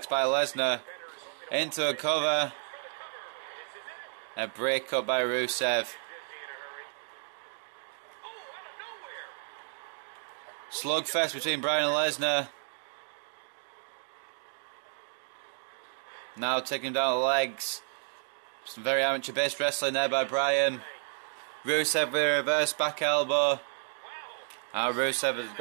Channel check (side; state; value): left; silent; digital silence